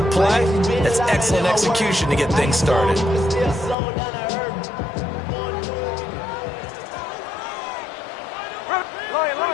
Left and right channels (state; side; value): drops out; right; at 3.8 s